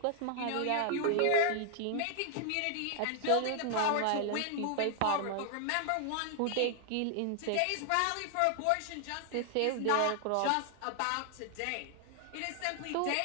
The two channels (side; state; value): both; different; correlation 0.00